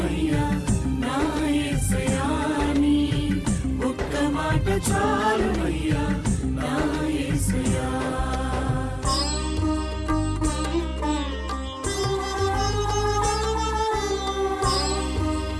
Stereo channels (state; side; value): identical; both; correlation 1.00